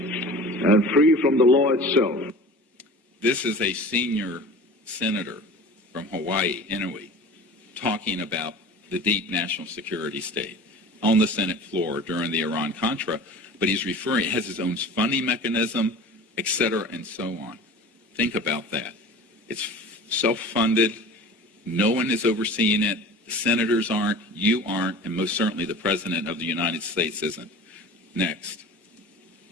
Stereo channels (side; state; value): both; normal; correlation 0.39